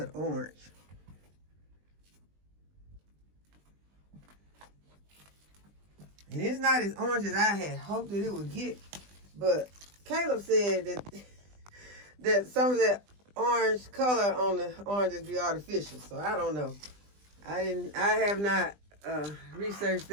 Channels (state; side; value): late; left; 20 ms